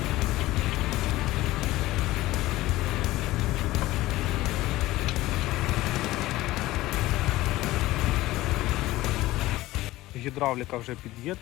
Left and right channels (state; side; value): quieter; right; 17.4 dB